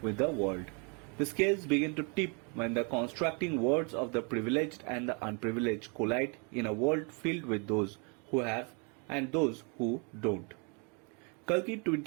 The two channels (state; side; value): quieter; left; 34.8 dB